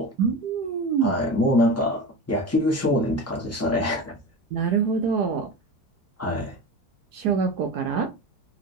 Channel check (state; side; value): normal; both; correlation 0.27